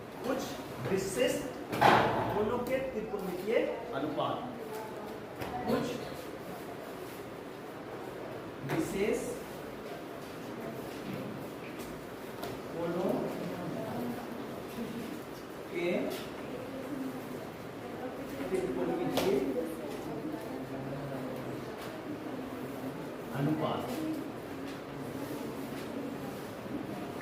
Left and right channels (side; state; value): both; identical; correlation 1.00